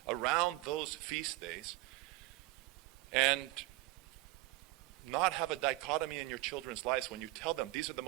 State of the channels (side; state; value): left; quieter; 19.7 dB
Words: around those feast days and not have a dichotomy in your children's lives when you tell them these are the